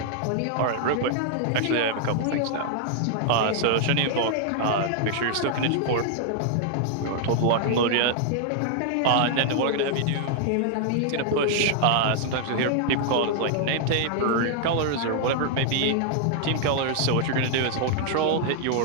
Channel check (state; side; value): different; both; correlation -0.01